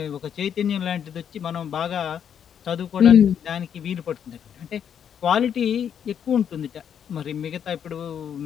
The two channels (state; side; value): quieter; right; 8.5 dB